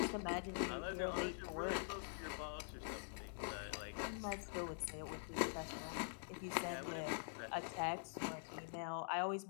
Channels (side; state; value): right; silent; digital silence